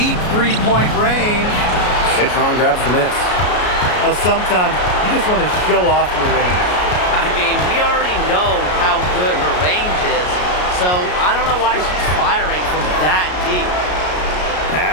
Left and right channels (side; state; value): right; late; 33 ms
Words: three-point range. Citron grabs the miss. Now, sometimes you just want to show off your range. I mean, we already know how good her range is, so I don't know why she's firing from that deep.